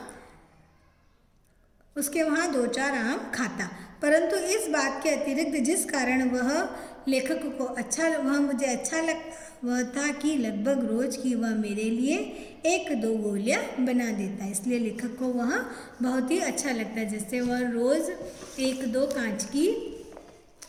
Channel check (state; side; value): identical; both; correlation 1.00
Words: उसके वहाँ 2-4 आम खाता। परंतु इस बात के अतिरिक्त जिस कारण वह लेखक को मुझे अच्छा लगता वह था कि लगभग रोज की वह मेरे लिए 1-2 गोलियाँ बना देता। इसलिए लेखक को वह बहुत ही अच्छा लगता है, जैसे वह रोज़ 1-2 कांच की